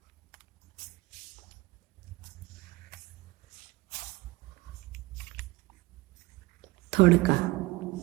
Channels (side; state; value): left; quieter; 20.8 dB